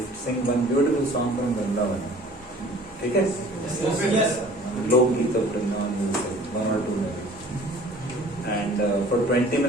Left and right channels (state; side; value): normal; both; correlation 0.49